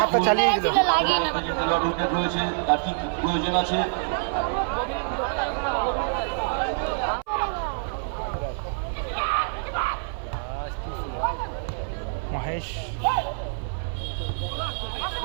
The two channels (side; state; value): left; silent; 56 dB below the other